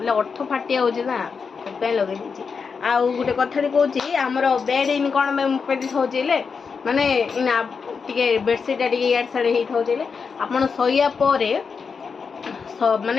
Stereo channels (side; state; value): right; quieter; 5.5 dB